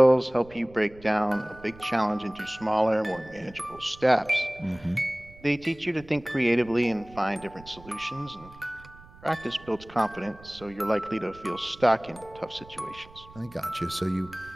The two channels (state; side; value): noise; right; rumble, 21 dB below the sound